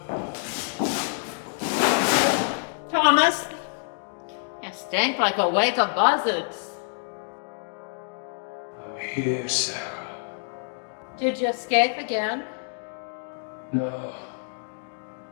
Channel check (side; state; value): right; silent; digital silence